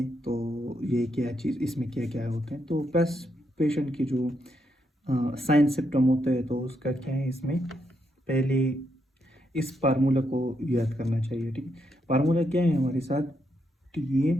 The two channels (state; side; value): normal; both; correlation 0.79